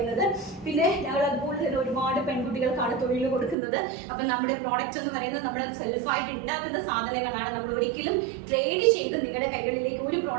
പിന്നെ ഞങ്ങൾ അതുപോലെ തന്നെ ഒരുപാട് പെൺകുട്ടികൾക്കാണ് തൊഴിൽ കൊടുക്കുന്നത്. അപ്പം നമ്മുടെ പ്രോഡക്റ്റ്സ് എന്ന് പറയുന്നത് നമ്മൾ സെൽഫായിട്ട് ഉണ്ടാക്കുന്ന സാധനങ്ങളാണ്. നമ്മൾ ഒരിക്കലും ട്രേഡ് ചെയ്ത് നിങ്ങളുടെ കൈകളിലേക്ക് ഒരു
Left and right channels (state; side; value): drops out; left; at 3.6 s